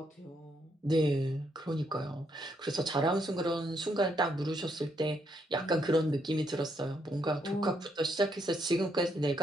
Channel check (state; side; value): normal; both; correlation 0.75